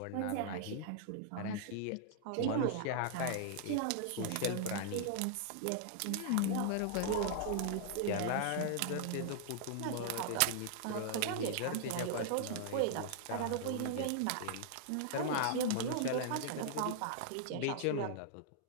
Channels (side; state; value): both; different; correlation -0.01